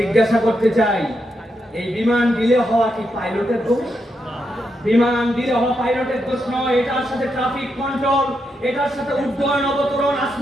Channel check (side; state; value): both; normal; correlation 0.83